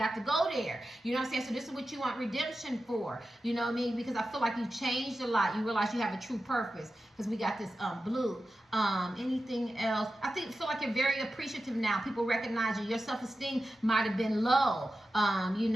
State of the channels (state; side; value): normal; both; correlation 0.93